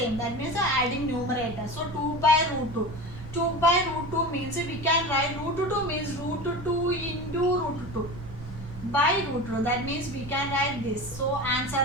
That means adding numerator. So, 2 by root 2. 2 by root 2 means we can write root 2 means root 2 into root 2 by root 2. That means we can write this. So, answer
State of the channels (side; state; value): right; noise; rumble, 13 dB below the sound